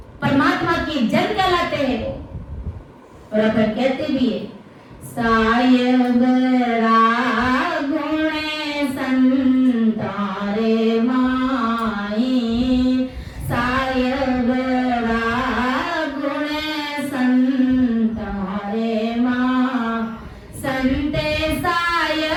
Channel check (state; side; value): identical; both; correlation 1.00